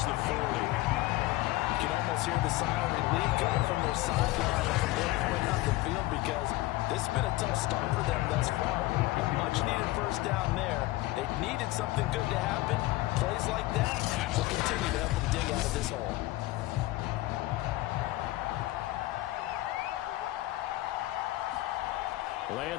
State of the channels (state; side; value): quieter; right; 18.2 dB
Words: the 40. You can almost hear the sigh of relief coming from their sideline at the midpoint on the field because this has been a tough start for them thus far. A much-needed first down there. They needed something good to happen. Plays like that will continue to help them dig out of this hole.